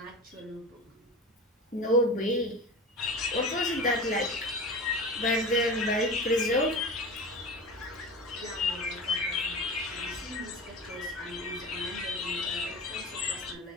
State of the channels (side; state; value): both; normal; correlation 0.31